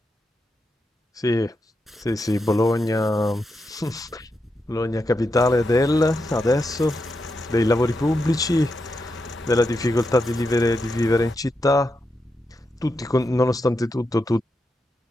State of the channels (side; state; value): both; normal; correlation 0.86